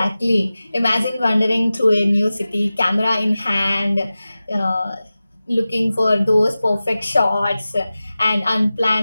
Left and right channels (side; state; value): both; inverted; correlation -0.96